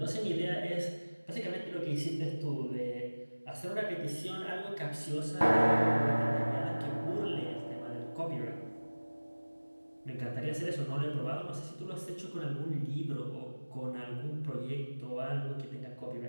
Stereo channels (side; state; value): both; inverted; correlation -1.00